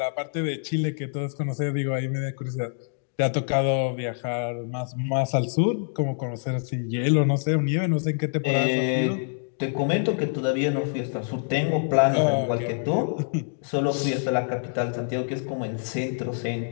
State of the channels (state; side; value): silent; right; digital silence